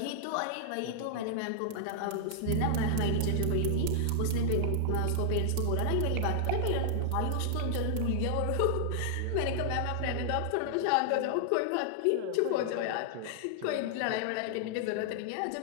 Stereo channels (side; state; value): both; different; correlation 0.00